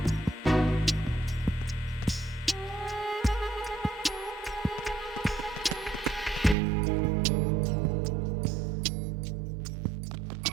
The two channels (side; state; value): left; drops out; at 6.6 s